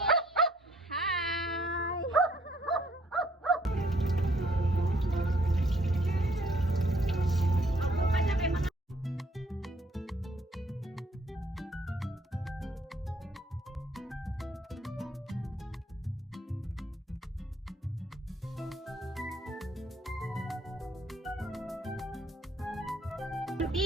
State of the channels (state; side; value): normal; both; correlation 0.64